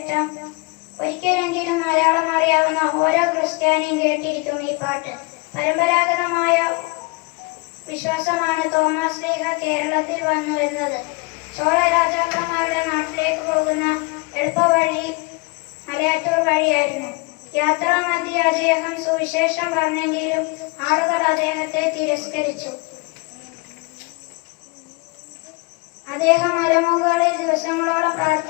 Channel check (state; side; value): quieter; right; 27.5 dB